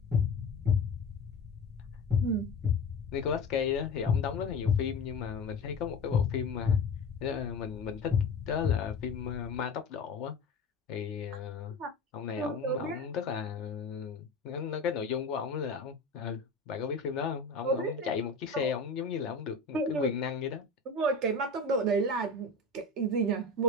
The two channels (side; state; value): right; quieter; 3.3 dB